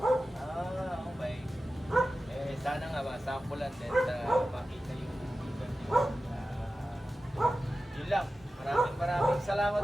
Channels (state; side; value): normal; both; correlation 0.94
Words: Okay. Sana nga ba, sampulan din makita yung iban yun. Yun lang. Maraming salamat